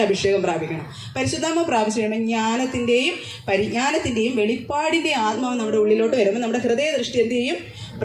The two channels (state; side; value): identical; both; correlation 1.00